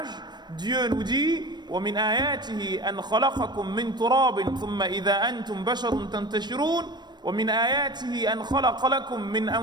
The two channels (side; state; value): left; late; 0.21 ms